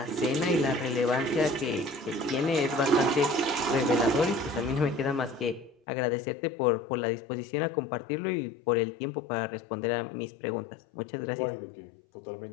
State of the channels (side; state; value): right; drops out; at 5.8 s